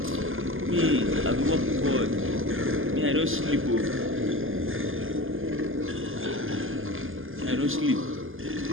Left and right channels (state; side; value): late; left; 0.59 ms